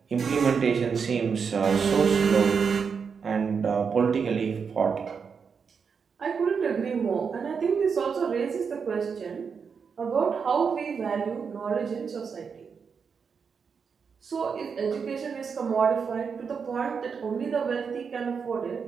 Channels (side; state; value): left; quieter; 6.0 dB